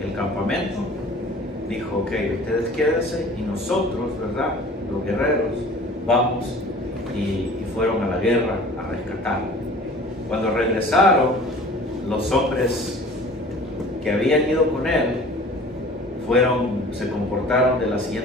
el campamento. Dijo, ok, ustedes quédense y nosotros, ¿verdad? Los guerreros, vamos y fueron a la guerra a rescatar. Cuando regresaron, los hombres que habían ido con él se comportaron de la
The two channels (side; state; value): both; normal; correlation 0.45